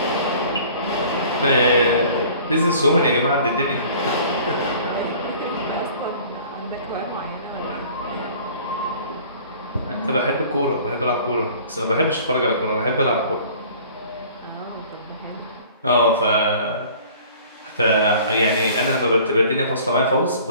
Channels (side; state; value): both; inverted; correlation -0.49